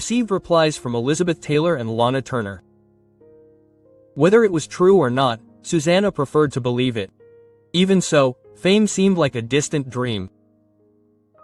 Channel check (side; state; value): both; identical; correlation 1.00